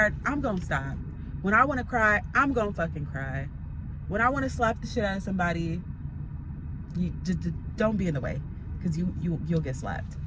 I'm gonna stop. When I want to cry, I'm gonna fucking cry. When I want to slap the shit out of somebody, you just don't be in the way, because you'll get slapped.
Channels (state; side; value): identical; both; correlation 1.00